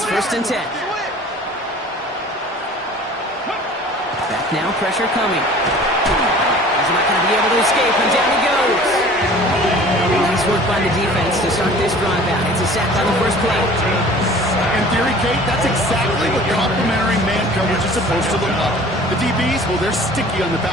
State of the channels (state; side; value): normal; both; correlation 0.46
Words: 1st and 10. Back now, pressure coming. He's not going to be able to escape, and down he goes. Nice work by the defense to start this drive out. It's a sack on the 1st play. In theory, Kate, that's exactly what complementary man coverage is supposed to look like. The DBs, well, they're sticky on the